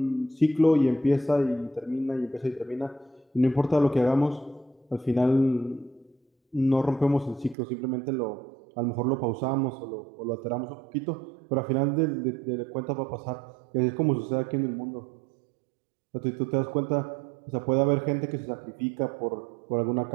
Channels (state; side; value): drops out; left; at 7.6 s